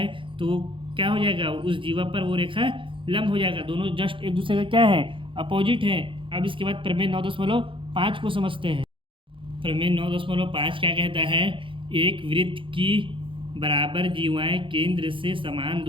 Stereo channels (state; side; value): late; left; 0.25 ms